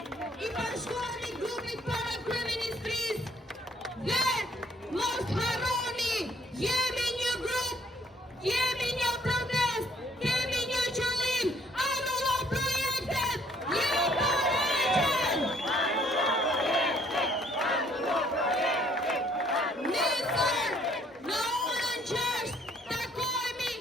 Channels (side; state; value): both; normal; correlation 0.63